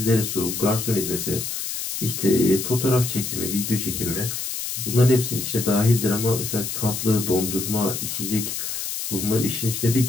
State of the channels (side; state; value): left; noise; hiss, 4 dB below the sound